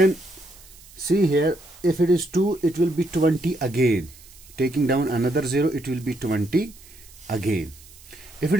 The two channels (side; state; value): right; noise; hiss, 22 dB below the sound